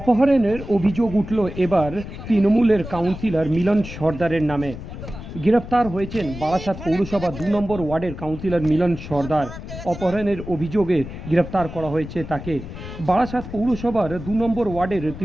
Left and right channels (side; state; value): left; noise; rumble, 11 dB below the sound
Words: অভিযোগ উঠল এবার তৃণমূলের কাউন্সিলর মিলন সর্দারের নামে। গ্রেফতার হয়েছেন বারাসাত পৌরসভা ২ নম্বর ওয়ার্ডের কাউন্সিলর মিলন সর্দার। অপহরণের অভিযোগে গ্রেফতার করা হয়েছে তাকে। বারাসাত পৌরসভার ২ নম্বর ওয়ার্ডের